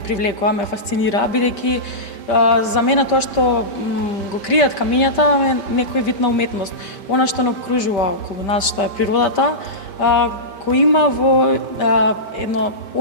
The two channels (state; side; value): late; right; 5.2 ms